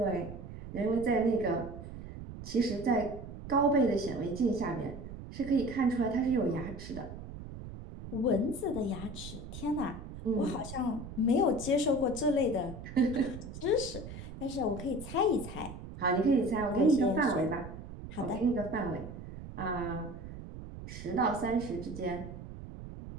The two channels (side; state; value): right; noise; rumble, 11 dB below the sound